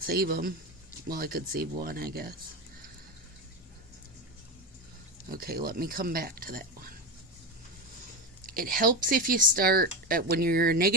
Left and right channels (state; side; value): normal; both; correlation 0.18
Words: save them. Well, I could save one, I guess. Okay, let me come back to that one. It helps if you start, when you're a